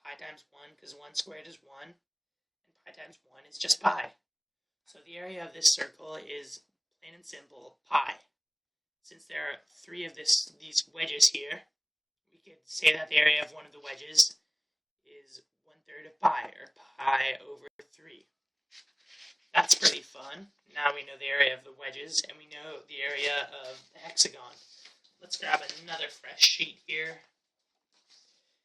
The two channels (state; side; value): identical; both; correlation 1.00